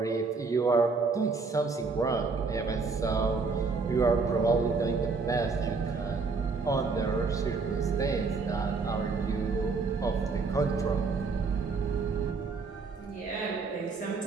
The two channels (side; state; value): left; quieter; 4.4 dB